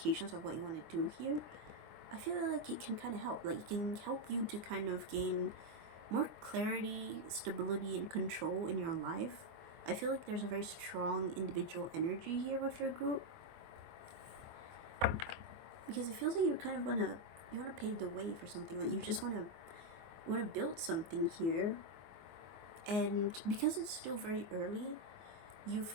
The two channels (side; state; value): left; late; 24 ms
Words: of what you want to do here, I feel like it can kind of help. Like, it can help you to kind of gain more clarity, stability, and control in your life. I feel like there's a very strong individual energy here with your group, because it feels like you kind of want to pave the way for something. Like, you just want to build something here, and because it's still very early, you